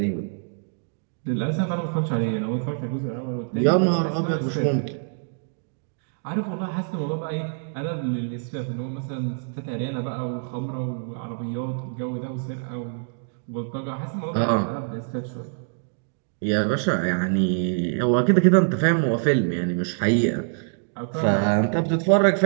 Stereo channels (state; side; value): silent; left; digital silence